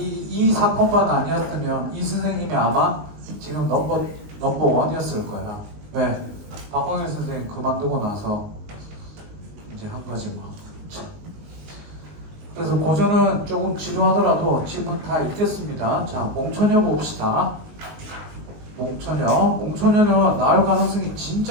사건만 아니었으면 이 선생님이 아마 지금 넘버 원이었을 거야. 왜? 박광일 선생님 그만두고 나서 이제 한 거지 뭐. 그래서 고전은 조금 지루하더라도 지금은 다 읽겠습니다. 자, 몽초녀 봅시다. 몽초녀는 나올 가능성이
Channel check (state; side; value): late; left; 19 ms